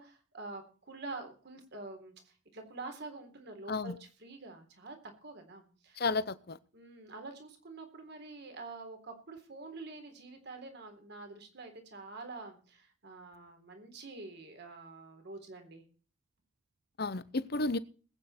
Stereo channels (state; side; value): normal; both; correlation -0.06